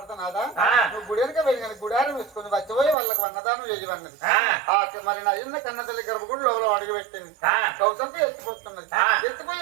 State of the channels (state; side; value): drops out; left; at 3.0 s